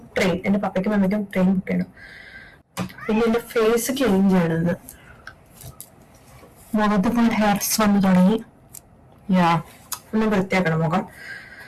train. എന്റെ പപ്പയ്ക്കും മമ്മിക്കും ട്രെയിൻ ബുക്ക് ചെയ്യണം. പിന്നെ എന്റെ ഫേസ് ക്ലീൻ ചെയ്യണമെന്ന്. മുഖത്ത് ഹെയർസ് വന്നു തുടങ്ങി. ഒന്ന് വൃത്തിയാക്കണം മുഖം.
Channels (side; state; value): both; identical; correlation 1.00